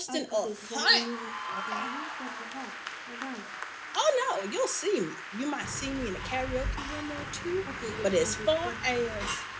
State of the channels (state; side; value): identical; both; correlation 1.00